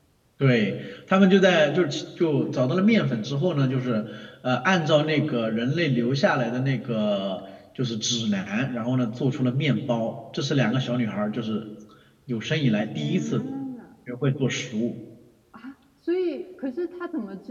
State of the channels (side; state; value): both; identical; correlation 1.00